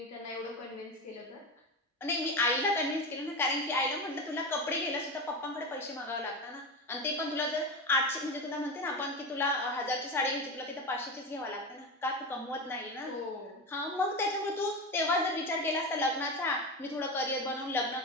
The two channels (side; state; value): both; normal; correlation 0.21